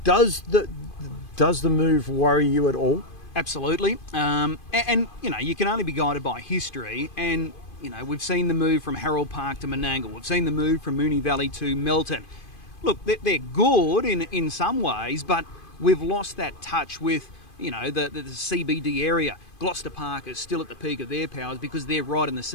Does the move worry you at all? Absolutely. And you can only be guided by history, and we've seen the move from Harold Park to Menangle. We've seen the move from Moonee Valley to Melton. Look, they're good in some ways, but we've lost that touch with the CBD area. Gloucester Park is still at the peak of their powers because they're right in the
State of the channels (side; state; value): right; late; 2.5 ms